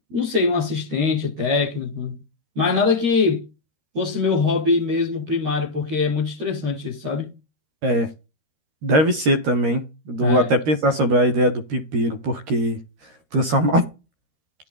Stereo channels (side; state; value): left; late; 13 ms